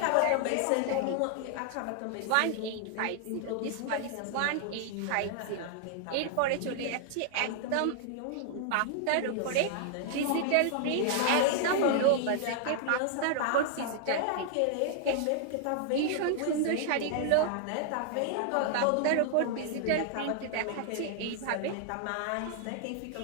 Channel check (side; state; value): both; different; correlation 0.00